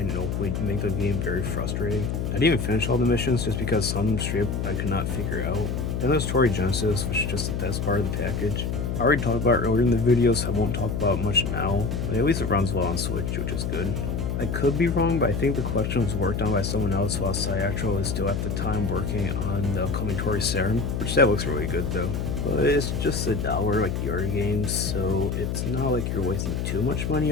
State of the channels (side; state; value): left; noise; hum, 1 dB below the sound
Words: and hopefully make the game very frustrating. I didn't even finish all the missions just because some straight I could not figure out. Then there's Tori Genesis, which is just the best part of the package. I already talked about it earlier in the video, so I won't talk about it much now, but at least it runs well on Switch, which is good. I could be wrong, but I think the collection was worked on by someone else while Cyatro is still at the time working on the upcoming Tori Saturn, which that looks really good though. But it's just $1 like the other games, so it's not like you're wasting too much money